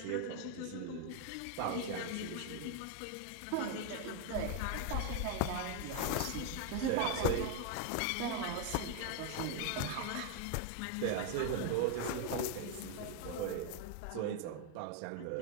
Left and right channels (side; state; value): both; different; correlation 0.01